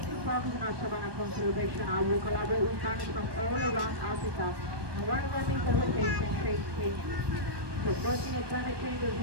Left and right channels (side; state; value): left; late; 1.2 ms